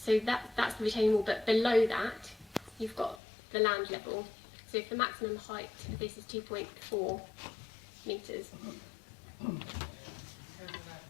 that's the retaining wall, but below that you've got the land level. So if the maximum height of this is 2.4 metres.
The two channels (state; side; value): drops out; right; at 3.2 s